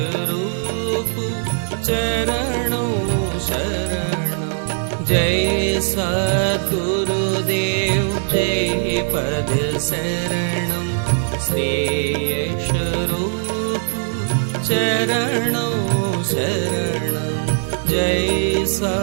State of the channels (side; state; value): left; silent; digital silence